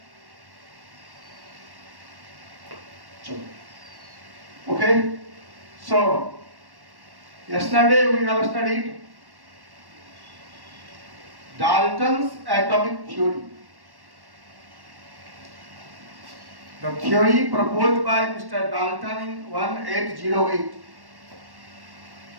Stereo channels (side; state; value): left; late; 1.1 ms